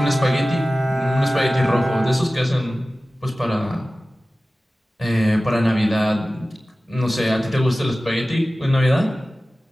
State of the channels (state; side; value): normal; both; correlation 0.96